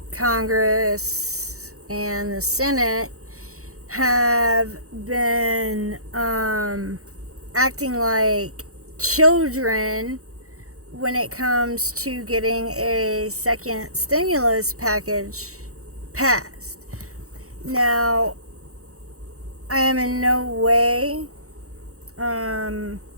Congress and the Senate have been acting like children when it comes to getting a second stimulus package passed. Now, I am in no way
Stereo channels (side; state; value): left; late; 0.65 ms